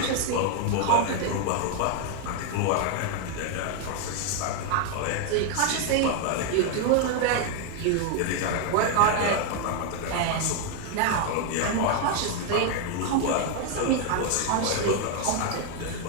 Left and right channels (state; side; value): different; both; correlation 0.01